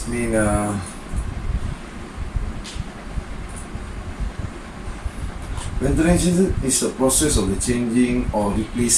mean ventilation is a process of the changing or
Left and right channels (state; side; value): identical; both; correlation 1.00